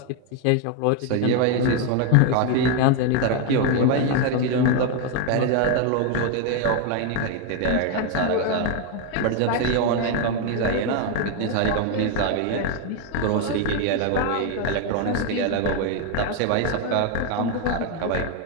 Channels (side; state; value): both; different; correlation 0.01